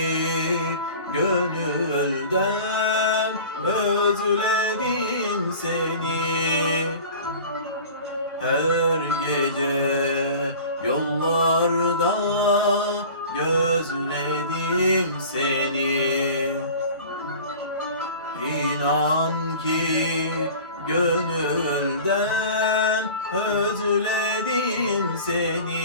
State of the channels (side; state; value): both; inverted; correlation -0.40